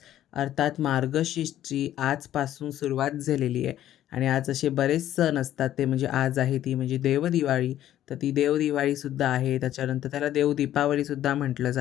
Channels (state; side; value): quieter; right; 12.3 dB